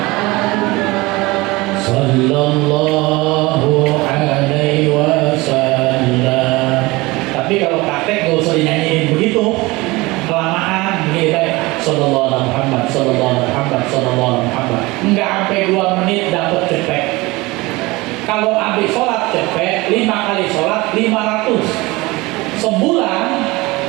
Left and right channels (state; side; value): quieter; left; 22.1 dB